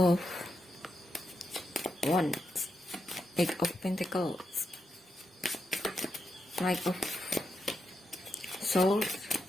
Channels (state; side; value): normal; both; correlation 0.85